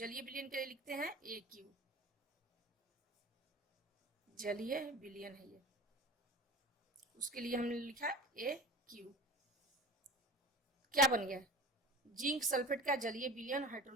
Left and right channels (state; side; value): normal; both; correlation 0.36